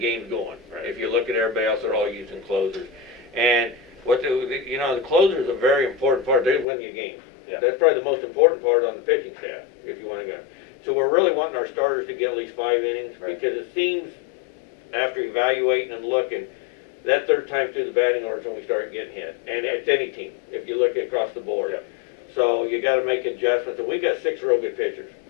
game's going. Right. If you look at everybody else, they're all using closers. And the closer is a very important part. They win you games. Yeah. That's probably the most important part on the pitching staff, if you want to go. So we're really wanting our starters to get at least 5 innings, Right. because it seems, after evaluating and looking, that third time through the batting order is when we start getting hit. And it's any team, if you look across the board. Yeah. So you got to make adjustments. And we've got 6 real good pitchers.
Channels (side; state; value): right; drops out; at 6.7 s